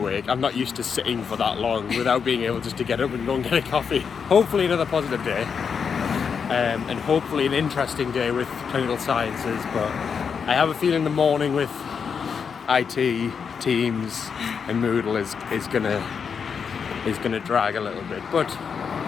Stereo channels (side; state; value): right; quieter; 6.4 dB